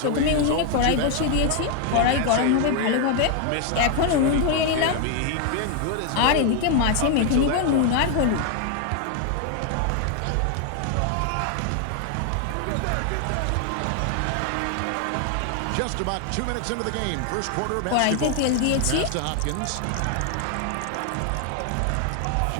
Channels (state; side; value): different; both; correlation 0.01